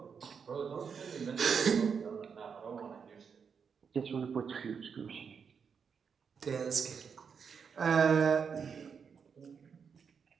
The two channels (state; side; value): quieter; left; 6.4 dB